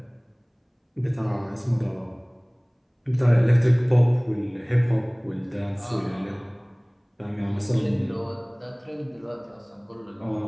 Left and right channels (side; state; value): both; identical; correlation 1.00